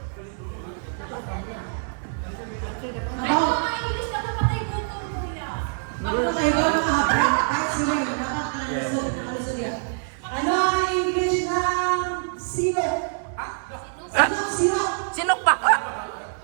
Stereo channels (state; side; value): silent; left; digital silence